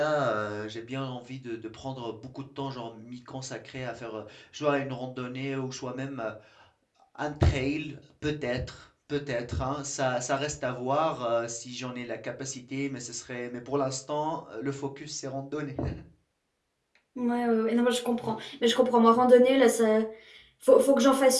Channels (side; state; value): both; identical; correlation 1.00